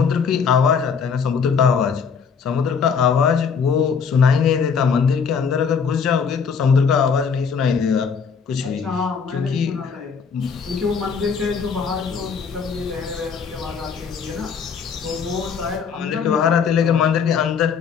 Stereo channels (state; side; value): quieter; right; 6.2 dB